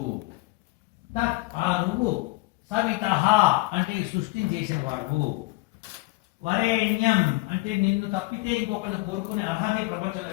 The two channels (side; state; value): right; quieter; 21.7 dB